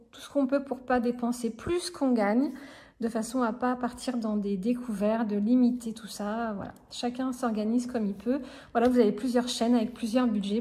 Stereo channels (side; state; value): both; identical; correlation 1.00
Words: peut pour pas dépenser plus qu'on gagne, de façon à pas partir dans des découvertes, de limiter tout ça. Voilà, chacun s'organise comme il peut. Voilà, vous avez plusieurs chaînes avec plusieurs budgets,